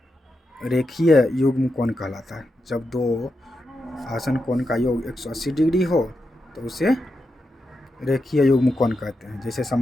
रेखीय युग्म कोण कहलाता है। जब दो आसन कोण का योग 180 डिग्री हो तो उसे रेखीय युग्म कोण कहते हैं। जैसे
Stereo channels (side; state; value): both; normal; correlation 0.87